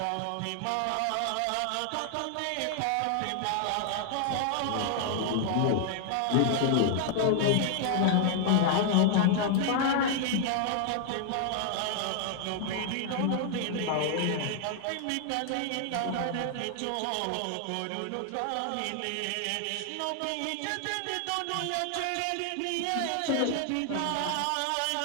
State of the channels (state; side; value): different; both; correlation 0.00